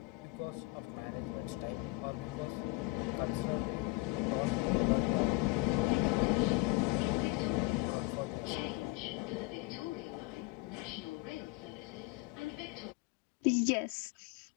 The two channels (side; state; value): right; quieter; 23.1 dB